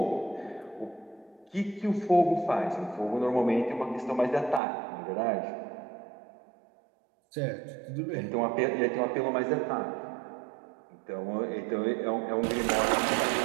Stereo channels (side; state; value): left; drops out; at 4.6 s